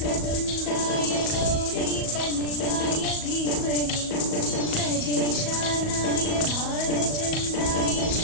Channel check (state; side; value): late; right; 38 ms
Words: गौरीतनयाय धीमहि गजेशानाय भालचन्द्राय